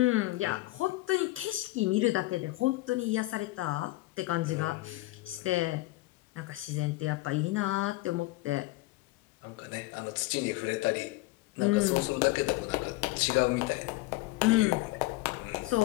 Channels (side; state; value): right; quieter; 19.4 dB